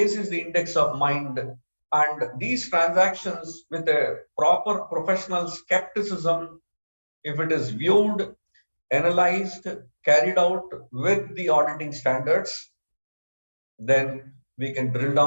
is the index of mind, and these transactions with a proper professional skepticism, if it is viewed, analyzed, carried out with the auditing standards, then we can drill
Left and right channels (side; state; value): both; inverted; correlation -1.00